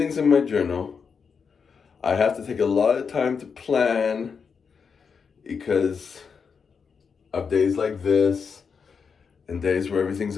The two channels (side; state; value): right; quieter; 5.9 dB